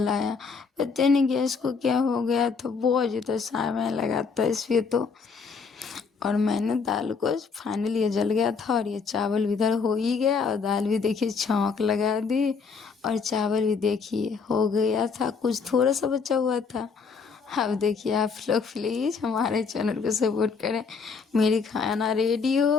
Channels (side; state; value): right; quieter; 5.3 dB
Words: पता नहीं गैस को क्या हो गया था, बहुत ज़्यादा समय लगा था इसलिए तो। और मैंने दाल को फाइनली ये जल गया था और ये चावल भी इधर हो ही गया और दाल भी देखिए छौंक लगा दी और चावल भी देखिए हो गया था, कुछ थोड़ा सा बचा हुआ था। अब देखिए आप लोग प्लीज़ हमारे चैनल को सपोर्ट करें। मेरी खाना रेडी